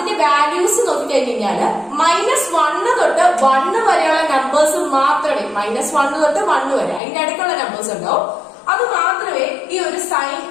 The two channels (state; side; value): drops out; right; at 7.0 s